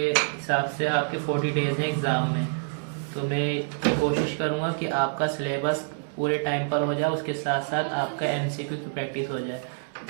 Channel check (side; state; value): left; silent; digital silence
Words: से आपके 40 डेज हैं एग्ज़ाम में। तो मैं ये कोशिश करूँगा कि आपका सिलेबस पूरे टाइम पर हो जाए, उसके साथ साथ आपका MCQ की प्रैक्टिस हो जाए,